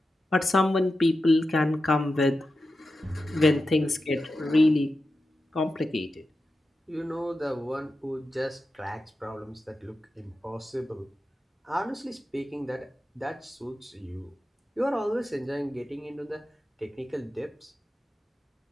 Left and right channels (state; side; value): normal; both; correlation 0.91